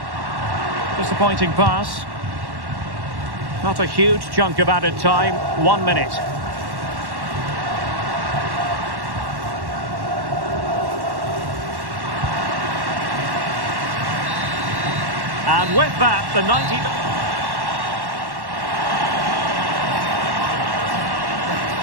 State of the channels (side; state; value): left; late; 1.1 ms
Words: Disappointing pass. Not a huge chunk of added time. 1 minute. And with that, the 90...